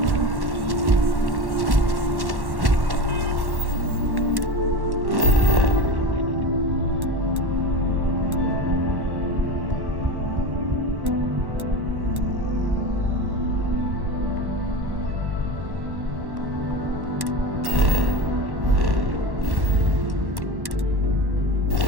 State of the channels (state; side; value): late; left; 1.1 ms